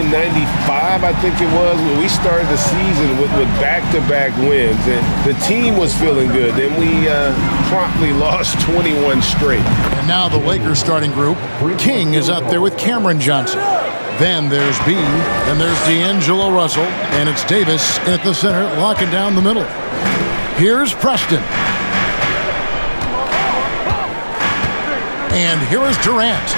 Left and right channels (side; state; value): both; inverted; correlation -1.00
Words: '95, I think it was, when we started the season with back-to-back wins, and the team was feeling good. Then we promptly lost 21 straight. And now the Lakers starting group. King is out there with Cameron Johnson. Then there's B, then there's D'Angelo Russell, and it's Davis at the center, locking down the middle. Here's Preston. And here is Durant.